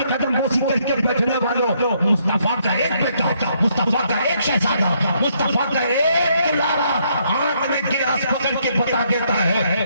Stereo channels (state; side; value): inverted; both; correlation -0.72